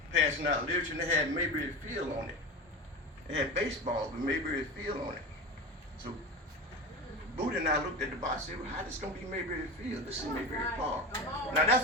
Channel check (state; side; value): normal; both; correlation 0.27